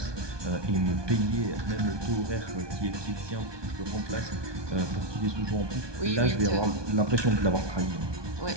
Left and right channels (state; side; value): late; left; 1.2 ms